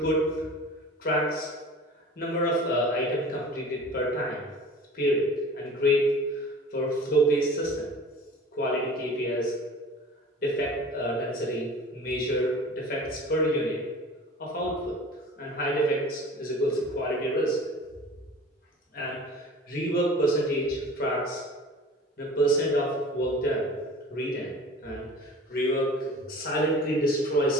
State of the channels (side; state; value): both; normal; correlation 0.41